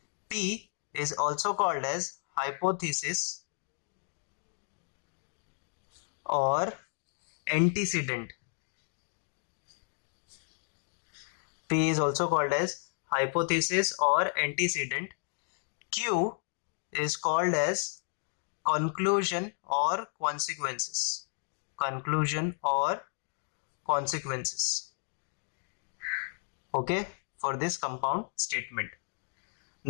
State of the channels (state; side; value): silent; right; digital silence